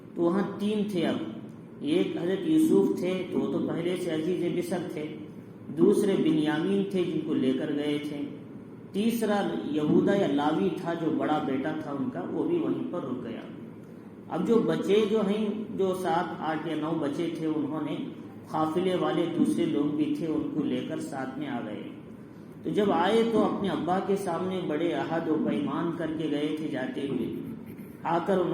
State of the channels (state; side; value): identical; both; correlation 1.00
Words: تو وہاں 3 تھے۔ اب ایک حضرت یوسف تھے تو وہ تو پہلے سے عزیز مصر تھے، دوسرے بنیامین تھے جن کو لے کر گئے تھے، تیسرا یہودا یا لاوی تھا جو بڑا بیٹا تھا ان کا، وہ بھی وہیں پر رک گیا۔ اب جو بچے جو ہیں، جو 7، 8 یا 9 بچے تھے، انہوں نے قافلے والے دوسرے لوگ بھی تھے ان کو لے کر ساتھ میں آ گئے۔ تو جب آئے تو اپنے ابا کے سامنے بڑے عہد و پیمان کر کے گئے تھے، جاتے ہوئے آ کر